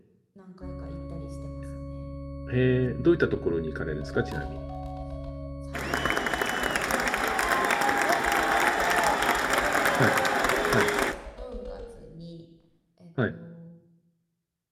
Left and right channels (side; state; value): both; identical; correlation 1.00